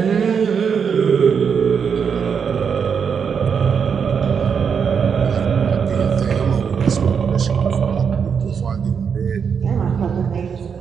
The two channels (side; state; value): left; quieter; 6.6 dB